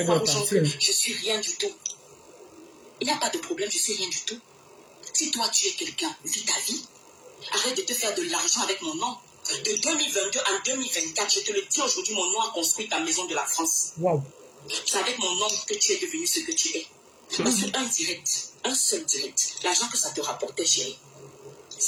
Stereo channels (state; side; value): identical; both; correlation 1.00